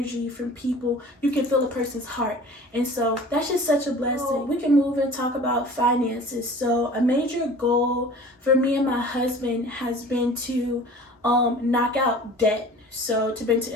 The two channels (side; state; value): both; normal; correlation 0.44